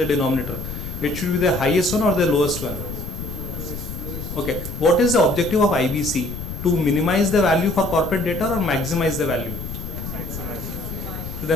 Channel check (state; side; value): noise; left; rumble, 8 dB below the sound